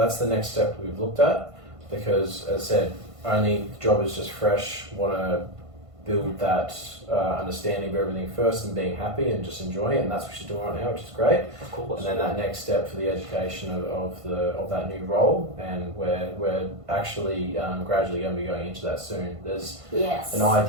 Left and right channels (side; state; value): left; late; 1.5 ms